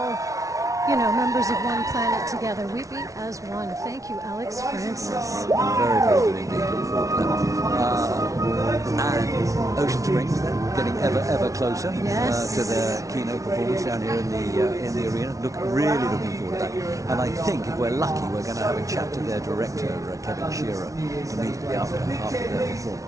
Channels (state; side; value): late; left; 0.16 ms